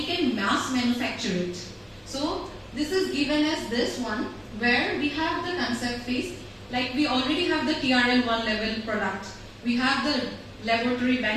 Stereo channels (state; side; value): identical; both; correlation 1.00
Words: can mass manufacture it. So this is given as this one where we have the concept phase, like we already have the TRL 1 level product. We have the laboratory